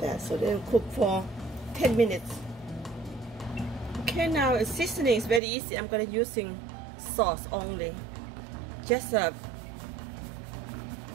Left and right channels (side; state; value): left; drops out; at 5.4 s